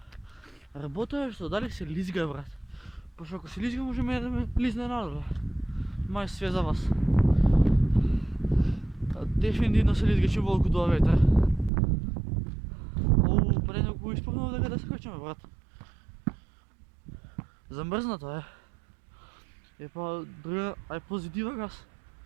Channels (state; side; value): drops out; left; at 11.7 s